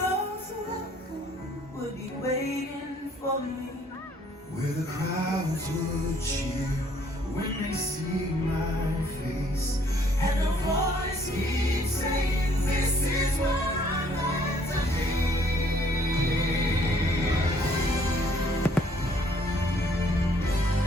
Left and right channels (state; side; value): normal; both; correlation 0.63